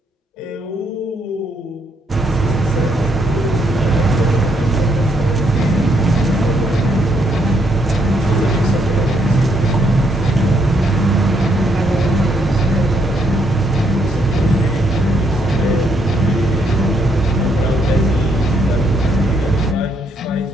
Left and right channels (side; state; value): both; normal; correlation 0.73